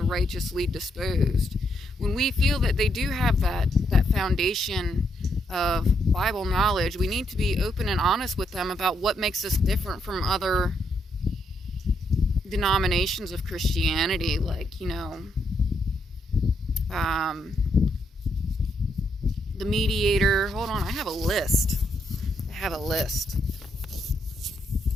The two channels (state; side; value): normal; both; correlation 0.77